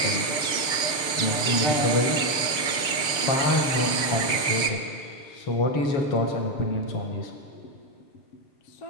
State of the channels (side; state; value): right; late; 6.7 ms